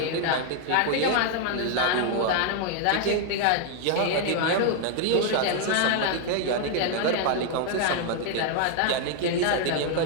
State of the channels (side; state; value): both; different; correlation 0.00